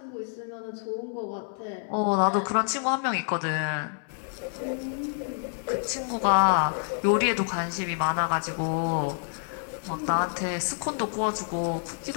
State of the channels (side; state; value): right; silent; 59 dB below the other